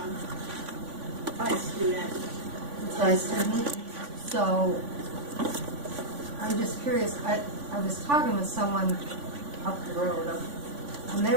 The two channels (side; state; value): left; late; 3.5 ms